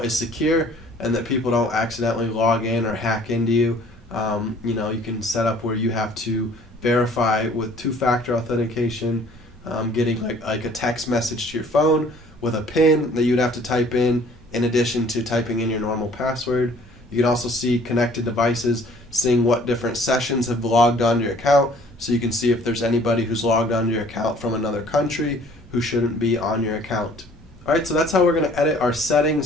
is secure and that people don't accidentally log in or hack into you. You can set up where you have to verify with two-factor authentication, getting like a text message to your phone with a PIN that you'd have to type in addition to typing in your normal password. You can also see connected devices, seeing what different sessions have logged onto your account, so you can see if there's anybody who's logged onto your account from another country who shouldn't be on your account. Alright, so that's how we're going to edit our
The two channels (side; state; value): both; normal; correlation 0.55